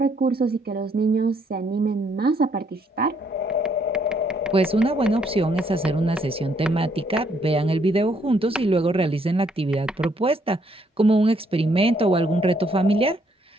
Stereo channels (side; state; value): both; normal; correlation 0.70